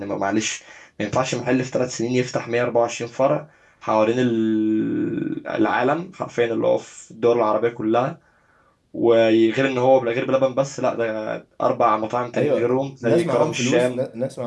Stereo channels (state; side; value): identical; both; correlation 1.00